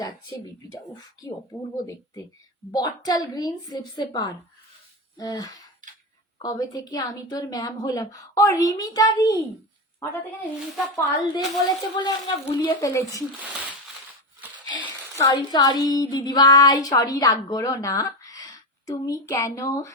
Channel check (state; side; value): normal; both; correlation 0.15